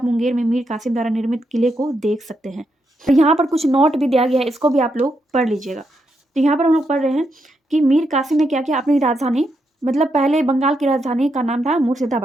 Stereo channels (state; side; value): normal; both; correlation 0.81